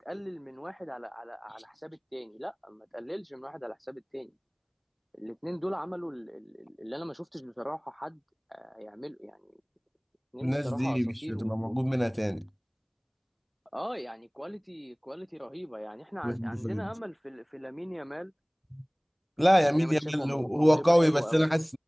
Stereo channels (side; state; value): both; identical; correlation 1.00